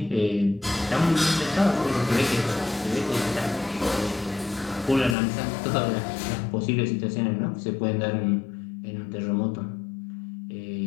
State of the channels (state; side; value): drops out; right; at 5.2 s